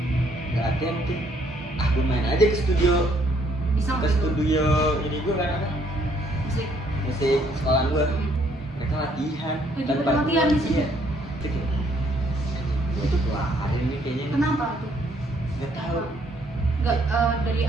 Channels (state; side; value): normal; both; correlation 0.67